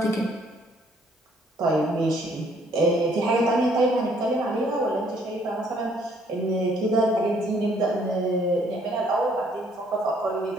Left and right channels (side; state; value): both; normal; correlation 0.64